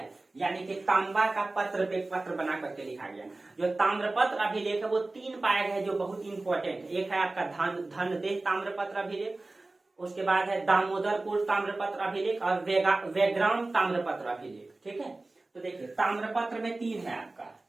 यानी कि तांबा का पत्र पे पत्र बना करके लिखा गया। जो ताम्रपत्र अभिलेख है वो 3 पाए गए जो बहुत इंपॉर्टेंट है। एक है आपका धनदेह ताम्रपत्र अभिलेख, उसके बाद है दामोदरपुर ताम्रपत्र अभिलेख और वेग्राम ताम्रपत्र अभिलेख, ठीक है। तो देखिए ताम्रपत्र में 3 है आपका,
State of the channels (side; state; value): left; quieter; 3.1 dB